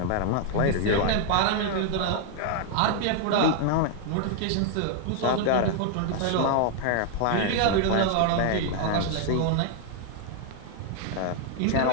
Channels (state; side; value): different; both; correlation 0.00